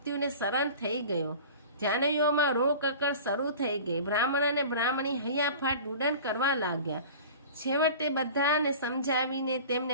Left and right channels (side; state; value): both; inverted; correlation -0.39